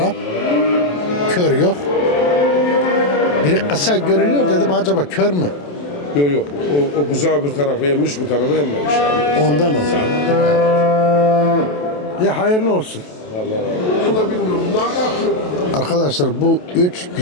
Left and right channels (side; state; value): right; late; 28 ms